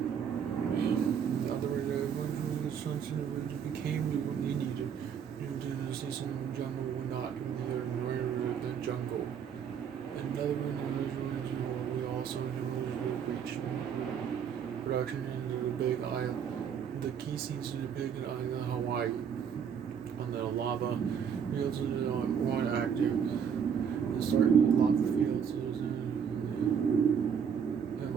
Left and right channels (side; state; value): left; quieter; 7.6 dB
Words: became what we needed to see some jungle or not the jungle. Another individual we also reached production into the big island. The key scenes in the big island of Hawaii. On the lava fields of the one active. The start of the lava fields is the